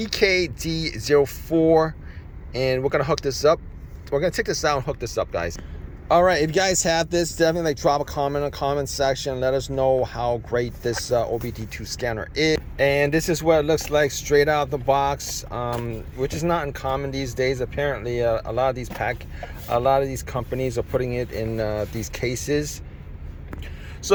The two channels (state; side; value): identical; both; correlation 1.00